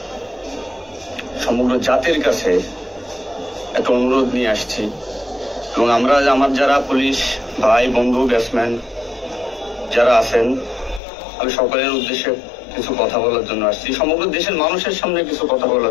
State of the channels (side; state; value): right; drops out; at 11.0 s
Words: সমগ্র জাতির কাছে একটা অনুরোধ নিয়ে আসছি এবং আমার যারা পুলিশ ভাই বন্ধু ব্যাটসম্যান যারা আছেন, আমি সকলের উদ্দেশ্যে কিছু কথা বলার জন্য আসছি। সমগ্র দেশের মানুষের সামনে কিছু কথা